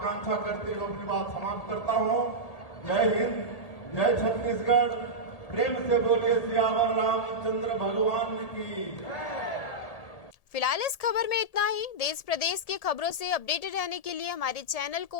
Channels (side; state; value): right; late; 1.7 ms